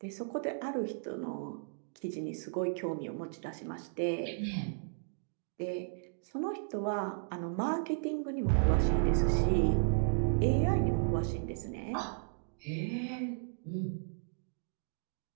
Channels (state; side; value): silent; left; digital silence